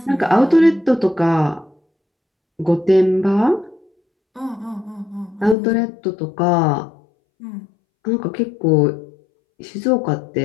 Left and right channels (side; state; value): right; drops out; at 5.6 s